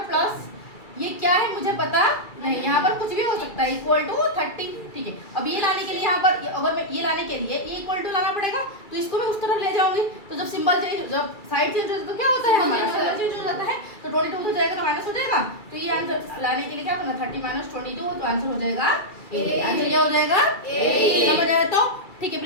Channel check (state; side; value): late; right; 2.3 ms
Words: प्लस ये क्या है मुझे पता नहीं, यहाँ पर कुछ भी हो सकता है, इक्वल टू 30, ठीक है? अब ये लाने के लिए यहाँ पर अगर मैं ये लाने के लिए ये इक्वल टू लाना पड़ेगा, तो इसको मैं उस तरफ ले जाऊंगी। तो जब सिंबल चेंज, जब साइड चेंज होता है तो क्या होता है हमारा सिंबल चेंज हो जाता है। तो 22 हो जाएगा तो माइनस हो जाएगा। तो ये आंसर लाने के लिए क्या करना, 30 - 22, तो आंसर हो जाएगा 8। आंसर क्या हो जाएगा 8। समझ आया? तो ठीक है